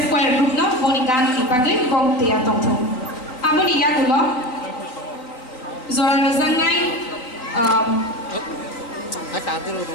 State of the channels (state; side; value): late; right; 4.0 ms